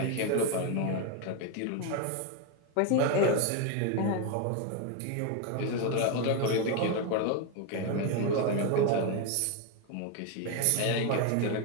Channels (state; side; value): different; both; correlation 0.01